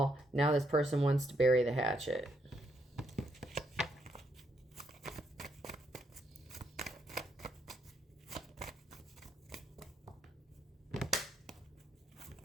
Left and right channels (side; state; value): both; normal; correlation 0.75